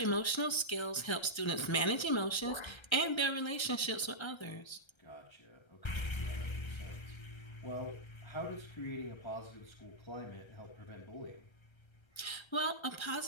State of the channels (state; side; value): late; right; 1.3 ms